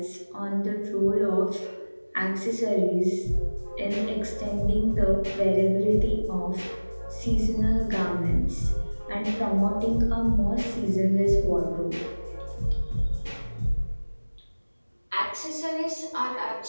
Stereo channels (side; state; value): both; inverted; correlation -1.00